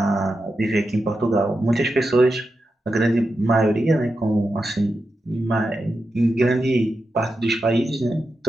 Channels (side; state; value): both; normal; correlation 0.89